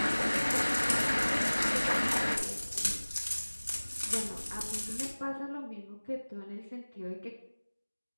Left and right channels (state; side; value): inverted; both; correlation -1.00